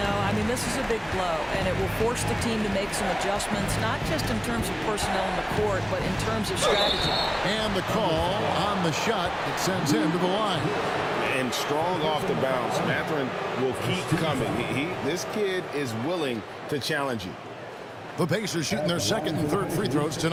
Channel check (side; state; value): both; identical; correlation 1.00